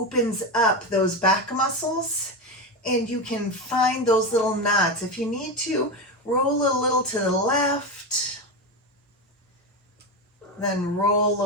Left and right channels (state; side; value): normal; both; correlation 0.16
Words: up those back muscles, and you can find those little knots. If you need to, roll a little to the left, then roll a